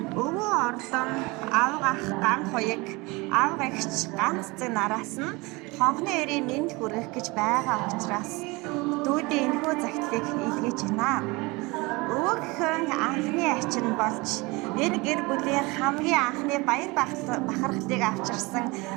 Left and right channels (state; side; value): quieter; left; 24.7 dB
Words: Өвөө орлон аавгах ган хоёг аавгагч ганц зэг нараас нь хонхны өрийн мэнд хүргэх гэж байгаа учраас дүүдийн энэхүү загтлыг илгээж байна. Өвгөхөн анхны ачин болж энэ гэр бүлийн хамгийн анхны баяр бахархлыг авчирсан